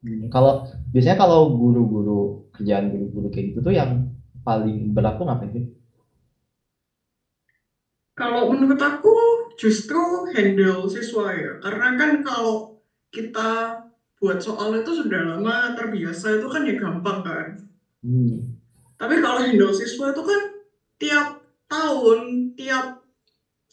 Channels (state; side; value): identical; both; correlation 1.00